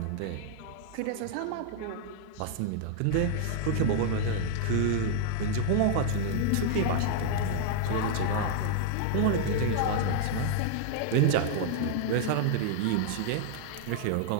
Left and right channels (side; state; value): both; different; correlation -0.01